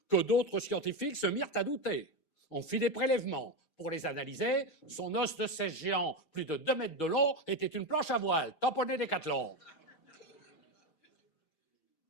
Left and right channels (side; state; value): right; late; 6.3 ms